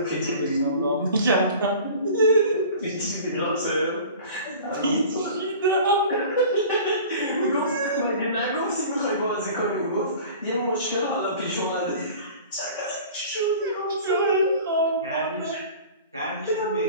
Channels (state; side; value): inverted; both; correlation -0.42